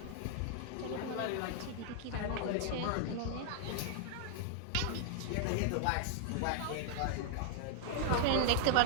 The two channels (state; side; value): different; both; correlation 0.00